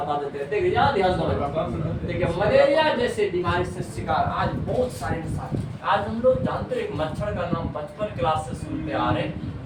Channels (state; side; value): identical; both; correlation 1.00